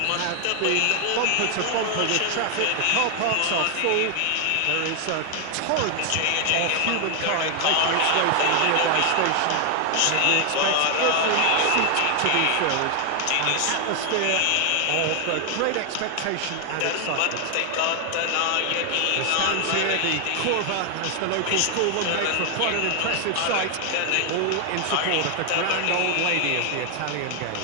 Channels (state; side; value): different; both; correlation 0.00